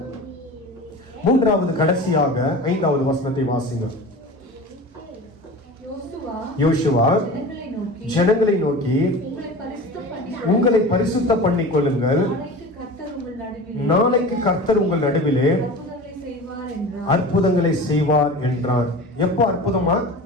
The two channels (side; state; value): both; normal; correlation 0.35